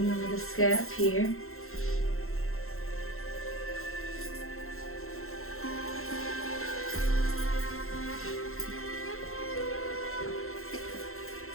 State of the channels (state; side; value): late; right; 0.62 ms